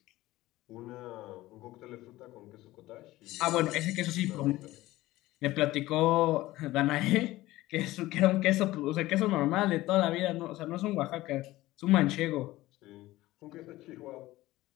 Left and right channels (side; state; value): right; quieter; 17.3 dB